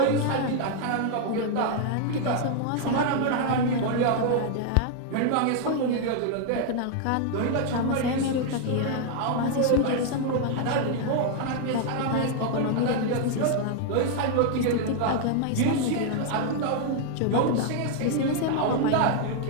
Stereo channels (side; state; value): both; different; correlation 0.00